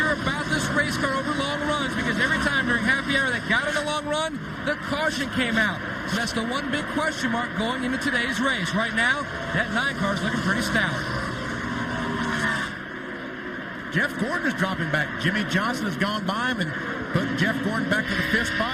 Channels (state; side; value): identical; both; correlation 1.00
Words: about this race car over long runs because every time during happy hour they got in a long run, the caution came out. So that's the one big question mark going into today's race. Right now, that 9 car is looking pretty stout. Jeff Gordon is dropping back. Jimmy Johnson has gone by him and put Jeff Gordon back to the 5th spot.